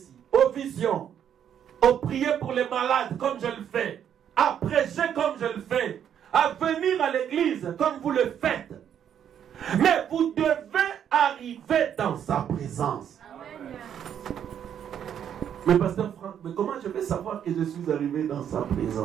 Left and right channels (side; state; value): left; quieter; 9.2 dB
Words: aux visions, aux prières pour les malades comme je le fais, à prêcher comme je le fais, à venir à l'église comme vous le faites. Mais vous devez arriver dans sa présence. Amen. Mais pasteur Franck, mais comment je vais savoir que je suis arrivé dans sa